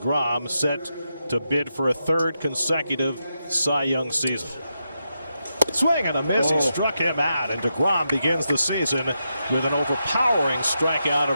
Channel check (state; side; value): inverted; both; correlation -0.86